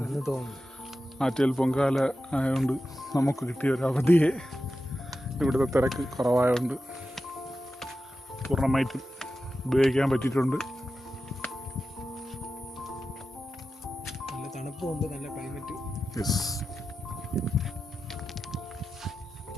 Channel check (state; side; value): normal; both; correlation 0.92